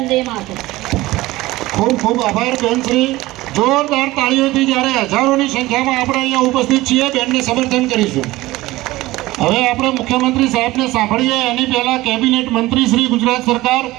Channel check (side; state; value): left; quieter; 18.4 dB